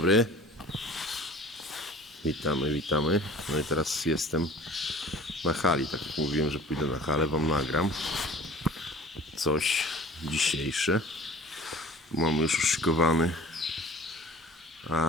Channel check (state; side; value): normal; both; correlation 0.45